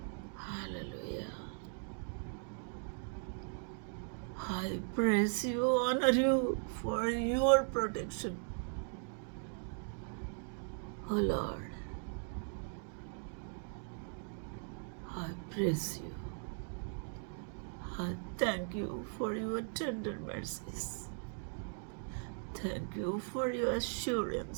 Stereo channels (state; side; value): silent; left; 52 dB below the other